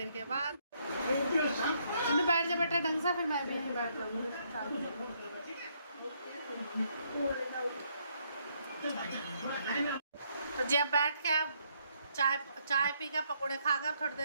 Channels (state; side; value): inverted; both; correlation -0.72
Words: के बाद। बैठ जा बेटा ढंग से, फिर मैं भी बैठ जाऊँगी। तो जब बैठ के अब चाय पी कर पकौड़े खाकर थोड़ी